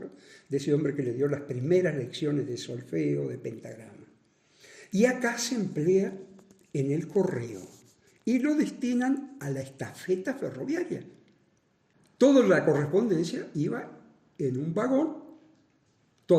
de ese hombre que le dio las primeras lecciones de solfeo, de pentagrama. Y acá se emplea en el correo y lo destinan a la estafeta ferroviaria. Toda la correspondencia iba en un vagón,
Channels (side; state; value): both; identical; correlation 1.00